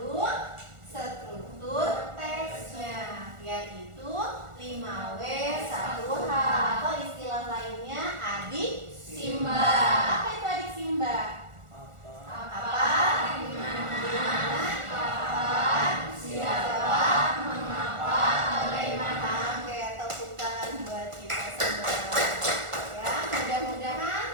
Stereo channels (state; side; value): late; left; 1.4 ms